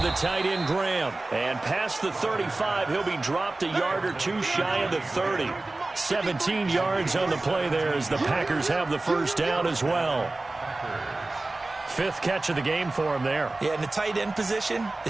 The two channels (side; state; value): left; quieter; 3.0 dB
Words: the tight end, Graham. And past the 35, he'll be dropped a yard or two shy of the 30. 17 yards on the play there as the Packers have the first down as well. 5th catch of the game for him there. Yeah, and the tight end position